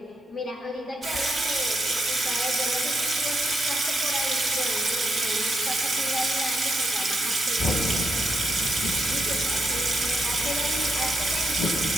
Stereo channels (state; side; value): normal; both; correlation 0.82